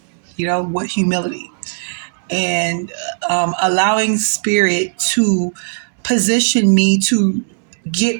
with humility and allowing spirit to position me to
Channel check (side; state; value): left; silent; digital silence